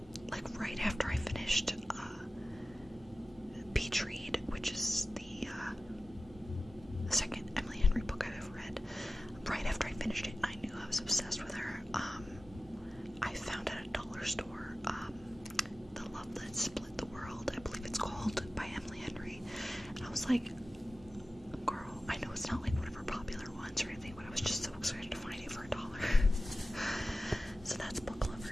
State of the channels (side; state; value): both; normal; correlation 0.95